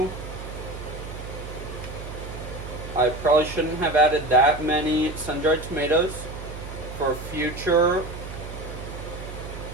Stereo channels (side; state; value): right; noise; hum, 10 dB below the sound